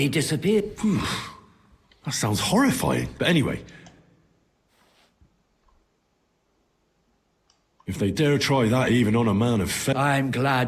disappeared. That sounds horrifying. But anyway. If they dare try that even on a man of faith... I'm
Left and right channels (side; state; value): both; identical; correlation 1.00